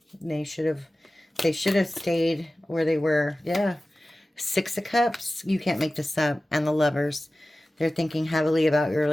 They should have stayed where they were. Yeah. 6 of Cups. You can't make this up. And the Lovers. They're thinking heavily about your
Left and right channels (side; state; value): both; normal; correlation 0.96